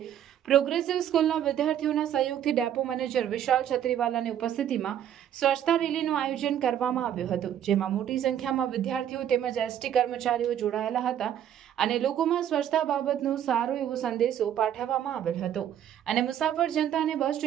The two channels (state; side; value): quieter; left; 10.3 dB